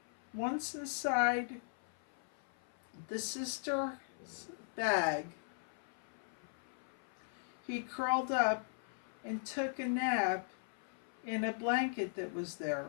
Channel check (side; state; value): right; silent; 52 dB below the other